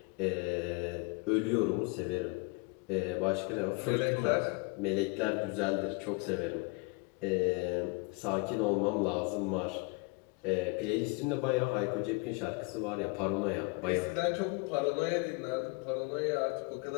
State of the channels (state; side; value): quieter; right; 29.0 dB